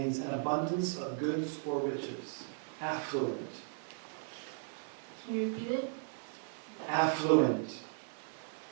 an abundance of goods or riches. Affluent. Can you repeat it? Affluent.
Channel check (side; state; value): left; silent; 53 dB below the other